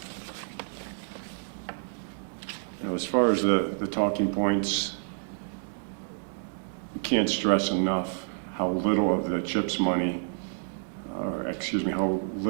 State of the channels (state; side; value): silent; left; digital silence